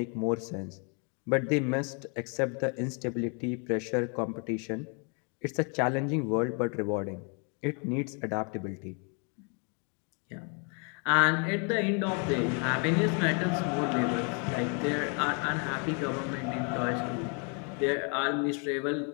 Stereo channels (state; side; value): quieter; right; 37.3 dB